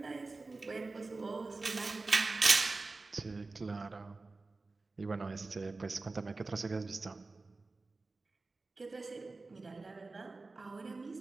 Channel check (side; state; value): left; quieter; 3.6 dB